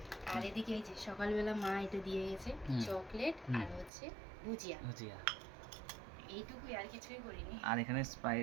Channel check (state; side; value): drops out; left; at 3.9 s